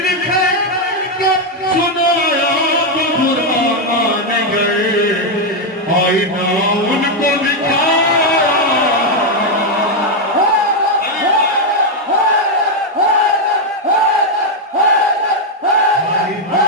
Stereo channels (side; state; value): both; normal; correlation 0.02